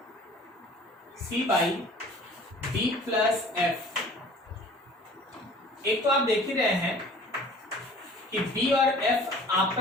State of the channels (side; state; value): both; normal; correlation 0.48